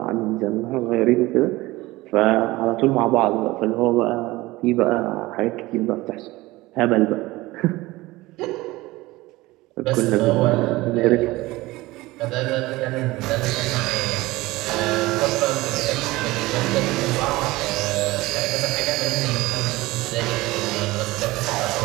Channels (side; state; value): left; quieter; 19.7 dB